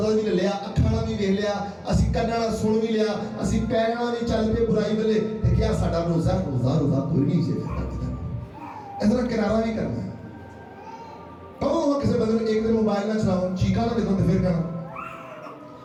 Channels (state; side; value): identical; both; correlation 1.00